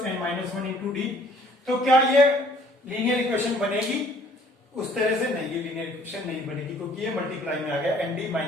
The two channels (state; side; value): normal; both; correlation 0.58